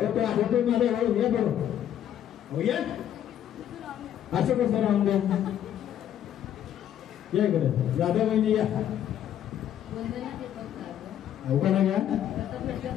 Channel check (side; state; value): right; quieter; 10.5 dB